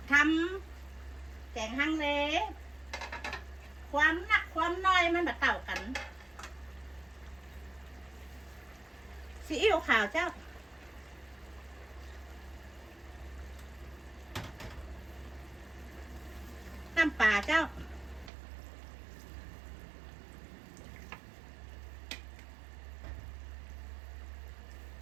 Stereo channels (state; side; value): drops out; left; at 18.3 s